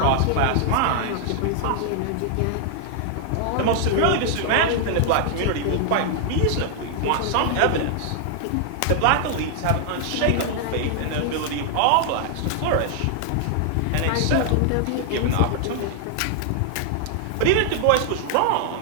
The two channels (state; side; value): different; both; correlation 0.00